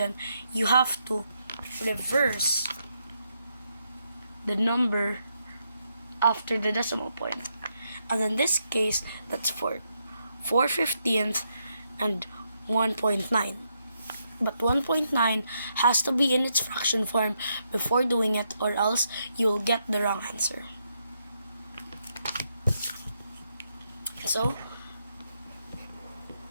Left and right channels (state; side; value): inverted; both; correlation -0.79